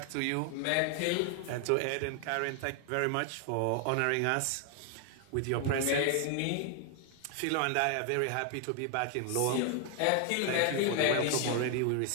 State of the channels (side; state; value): both; different; correlation 0.00